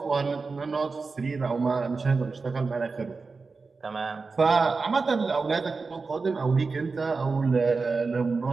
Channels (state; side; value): quieter; left; 4.3 dB